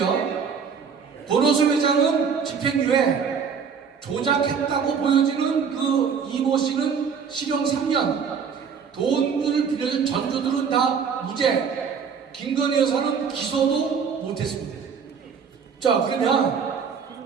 권오수 회장은 집행유예, 조작했다고 보여지는 그 이모 씨는 실형 3년, 돈을 빌려준 전주들은 다 무죄, 김건희 여사는 기소도 못했습니다. 자, 그러면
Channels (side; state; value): left; quieter; 6.4 dB